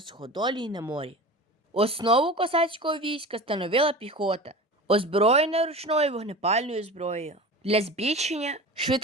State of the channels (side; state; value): both; normal; correlation 0.34